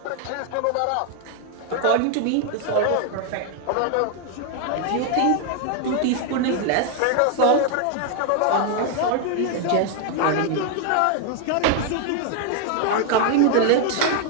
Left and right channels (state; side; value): different; both; correlation 0.00